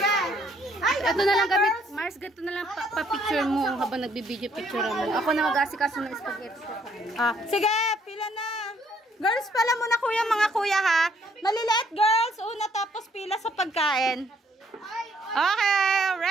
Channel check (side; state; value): both; normal; correlation 0.66